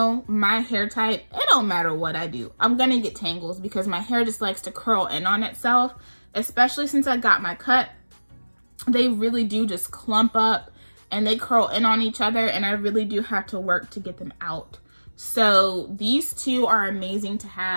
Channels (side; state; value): both; inverted; correlation -1.00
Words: my hair type, it don't matter what I do, I'm gonna get tangles because my hair just likes to curl in on itself, especially since I got my cut. They really do just clump up and they curl in on each other, and I really do have to work to get them out. So these two are amazing to